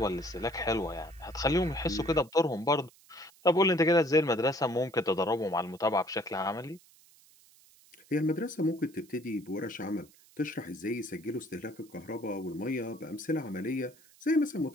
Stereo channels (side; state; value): right; noise; hiss, 27 dB below the sound